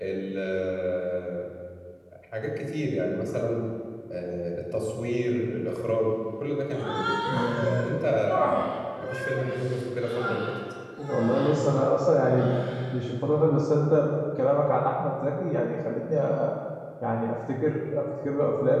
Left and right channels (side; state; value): both; identical; correlation 1.00